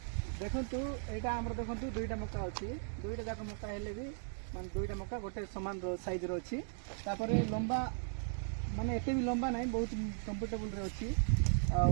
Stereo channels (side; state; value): left; silent; digital silence